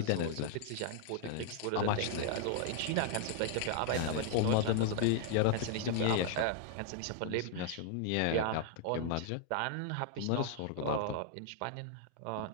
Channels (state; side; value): different; both; correlation -0.01